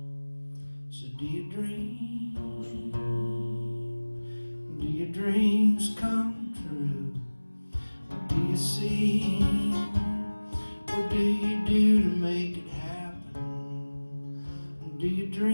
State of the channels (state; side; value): inverted; both; correlation -1.00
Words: dreams come true? What do you see? What do you do to make it happen? Do you